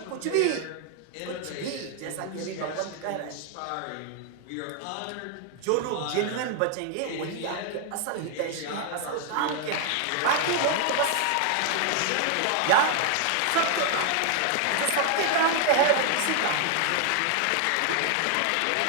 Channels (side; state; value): both; different; correlation 0.00